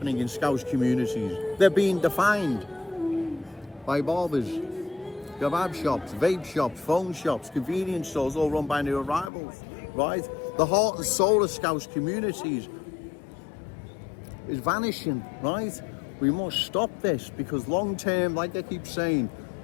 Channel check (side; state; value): right; drops out; at 9.3 s